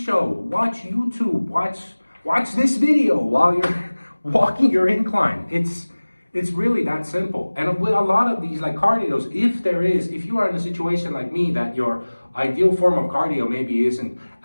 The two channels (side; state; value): both; inverted; correlation -1.00